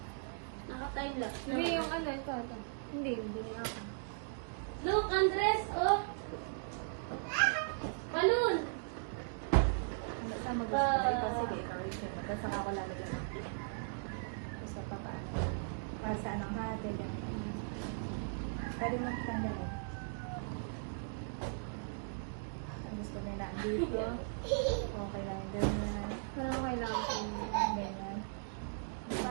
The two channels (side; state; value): left; silent; digital silence